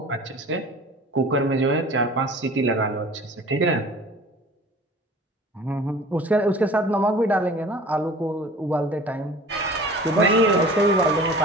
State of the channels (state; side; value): normal; both; correlation 0.43